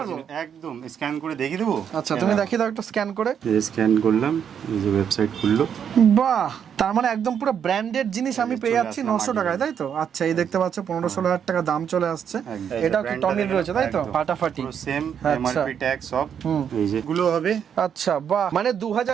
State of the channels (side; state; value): left; quieter; 8.1 dB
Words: original, একদম স্ক্যান করে দেখিয়ে দেবো। আচ্ছা তুমি দেখিয়ে দাও একটু স্ক্যান করে। স্ক্যান করলাম, এই যে ওয়েবসাইট খুললো। বাহ, তার মানে একদম পুরো ব্র্যান্ডেড জিনিস আমি পেয়ে চলে যাচ্ছি আসলাম 900 টাকায়, তাই তো? আচ্ছা এই দেখতে পাচ্ছ 15-16,000 টাকা দাম চলে আসছে। একদম। এটাও কি ব্র্যান্ডটা টমির দেখে রয়েছে, তাই তো? একদম। ফাটাফাটি। পুরো সেম আচ্ছা। এমআরপি ট্যাগ সব। এই যে গুলো হবে। আচ্ছা বাহ, মানে